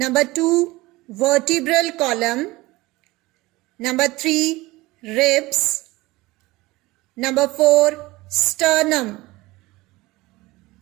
2, vertebral column; number 3, ribs; number 4, sternum.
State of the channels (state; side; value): quieter; left; 20.4 dB